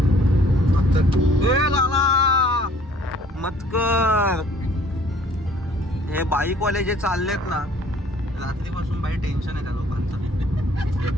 मतकर हे बाईकवाले जे चाललेत ना, रात्रीपासून बाई टेन्शन आहे त्या लोकांचं.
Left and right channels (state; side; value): normal; both; correlation 0.57